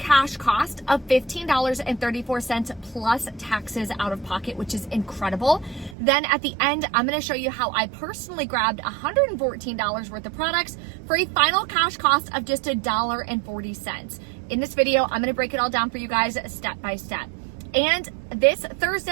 cost of $15.34 plus taxes out of pocket, which is incredible. Then at the end, I'm going to show you how I personally grabbed $114 worth of products for a final cash cost of just $1.40. In this video, I'm going to break it all down for you guys step by step. And this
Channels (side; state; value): left; drops out; at 6.0 s